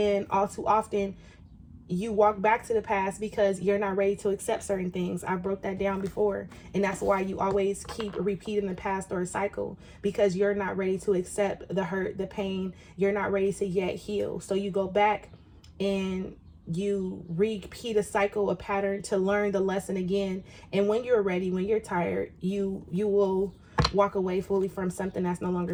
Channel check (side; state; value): both; identical; correlation 1.00